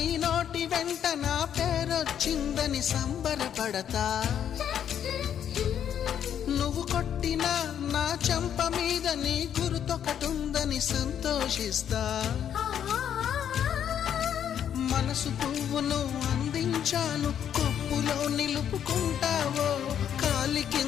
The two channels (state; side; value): quieter; right; 9.3 dB